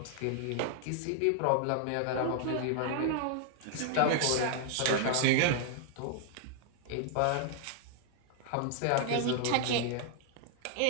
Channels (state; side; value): different; both; correlation 0.00